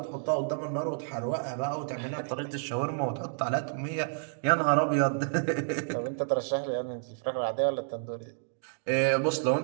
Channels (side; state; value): left; silent; digital silence